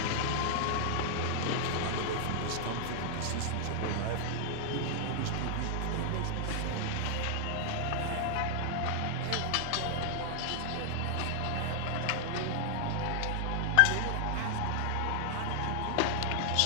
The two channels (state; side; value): different; both; correlation 0.00